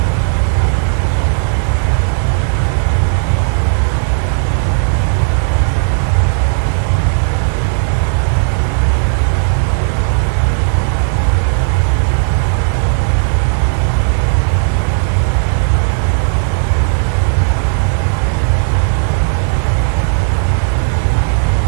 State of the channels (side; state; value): left; silent; 71 dB below the other